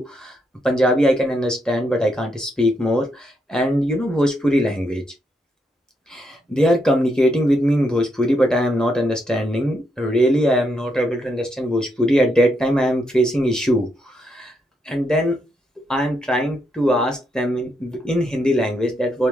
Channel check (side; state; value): both; normal; correlation 0.79